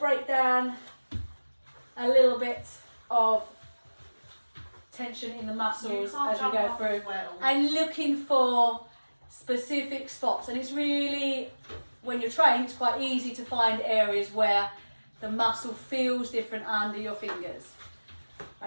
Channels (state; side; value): inverted; both; correlation -1.00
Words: down a little bit of tension in the muscles as we go through, and looking for specific spots. And it's really, when you're trained, it's quite easy to find areas where the muscle feels different under your fingers,